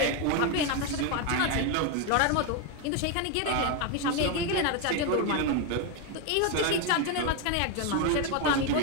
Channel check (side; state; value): both; different; correlation 0.02